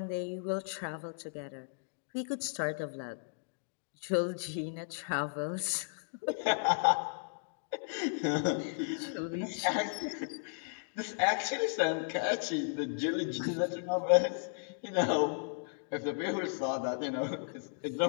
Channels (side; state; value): right; silent; digital silence